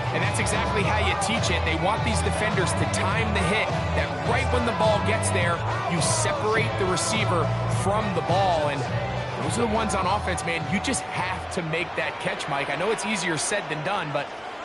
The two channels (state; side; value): identical; both; correlation 1.00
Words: And that's exactly how you teach it. They want these defenders to time the hit, that right when the ball gets there, you separate the receiver from the ball. And those are the ones on offense, man. You just have to make that catch, Mike. I know it's easier said than done, but